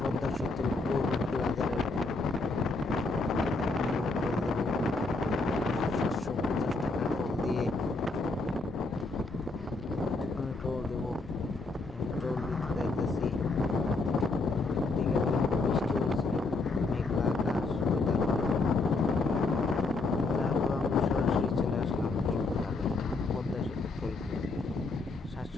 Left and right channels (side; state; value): right; quieter; 3.5 dB